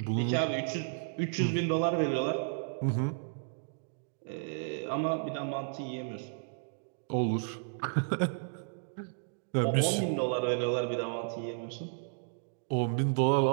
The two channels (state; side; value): silent; left; digital silence